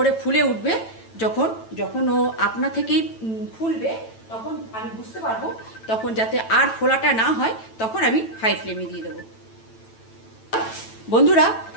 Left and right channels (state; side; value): late; right; 9.0 ms